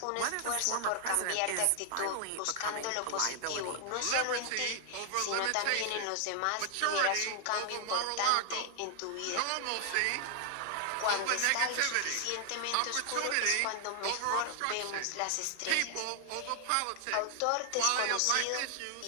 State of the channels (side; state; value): both; different; correlation 0.00